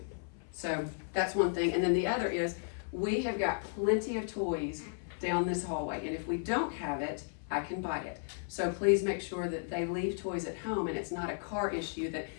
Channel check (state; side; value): silent; right; 55 dB below the other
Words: So that's one thing. And then the other is we have got plenty of toys down this hallway. And if we don't have it, I can buy it. So please make sure that they leave toys at home, and it's not a car issue that,